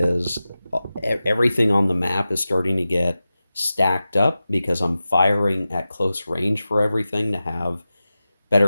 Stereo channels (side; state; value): both; inverted; correlation -0.94